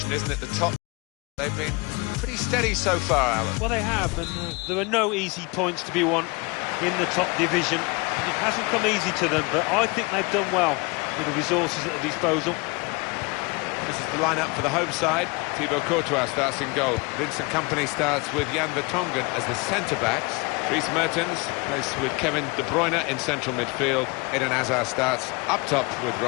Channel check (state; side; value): quieter; right; 27.3 dB